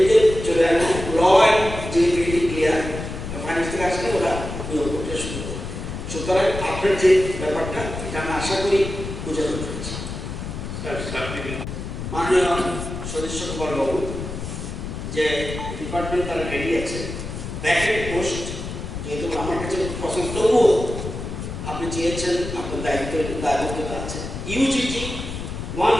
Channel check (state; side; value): noise; left; rumble, 7 dB below the sound